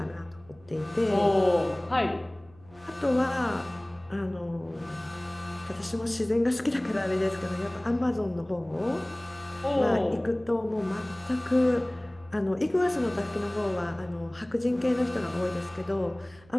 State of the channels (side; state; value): right; noise; hum, 26 dB below the sound